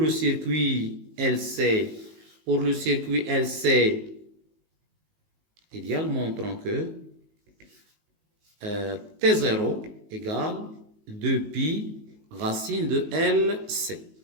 circuit LC, idéal, montrons que T0 égale 2pi racine de LC.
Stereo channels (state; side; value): late; left; 19 ms